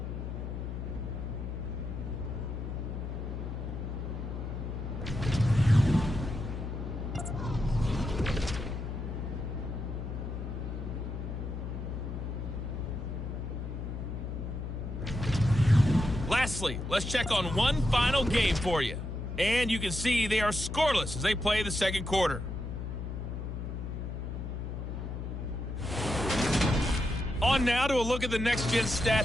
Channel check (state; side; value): noise; left; hum, 5 dB below the sound